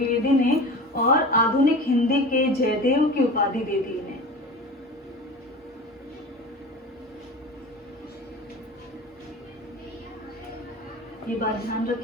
ने, और आधुनिक हिंदी के जयदेव की उपाधि दे दी इन्हें। ये बात ध्यान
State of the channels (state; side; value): normal; both; correlation 0.34